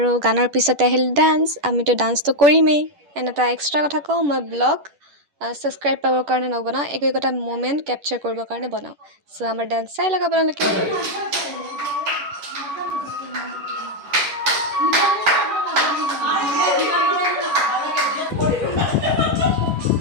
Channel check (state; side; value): late; left; 10 ms